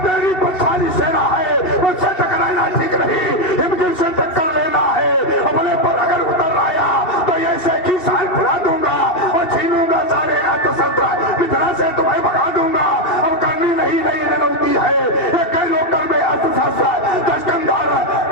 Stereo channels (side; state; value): right; late; 2.7 ms